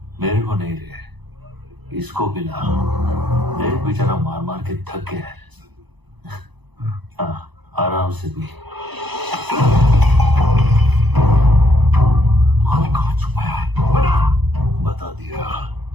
मेरे को नहीं रे, इसको पिला। देख बेचारा मार मार के थक गया है। हाँ, आराम से पी। माल कहाँ छुपाया है? बता दिया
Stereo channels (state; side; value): late; left; 1.0 ms